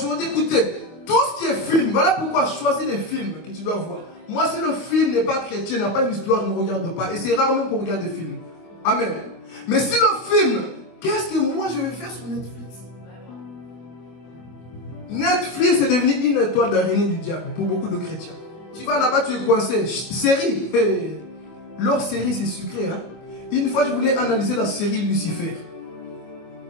écoutez, tout ce qui est film, voilà pourquoi choisis les films que tu dois voir. Moi, si le film n'est pas chrétien, n'a pas une histoire, ne regarde pas. Et c'est rarement qu'on regarde des films. Amen. Mais si le film, qu'est-ce que moi je vais faire sur Netflix? Netflix est devenu une étoile d'araignée du diable pour beaucoup de chrétiens. Tu vas là-bas, tu es coincé. Série. Leur série, c'est sucré. Hein? Une fois, je voulais analyser la série Lucifer.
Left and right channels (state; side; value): late; right; 24 ms